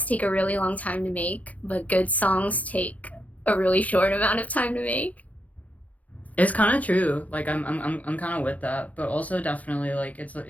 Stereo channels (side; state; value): right; late; 0.072 ms